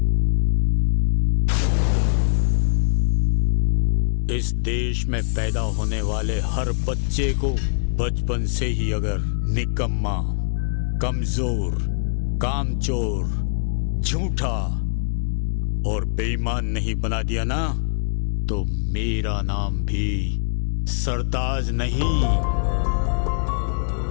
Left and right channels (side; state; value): right; silent; digital silence